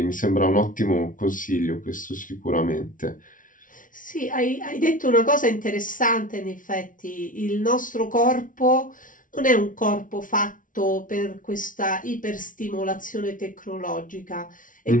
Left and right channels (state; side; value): late; right; 0.38 ms